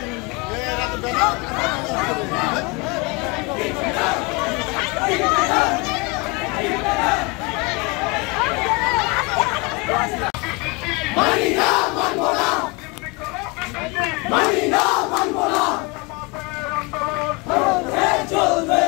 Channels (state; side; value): quieter; right; 27.5 dB